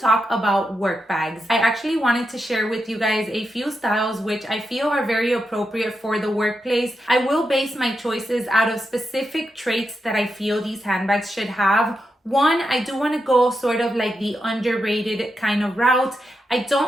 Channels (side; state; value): both; normal; correlation 0.86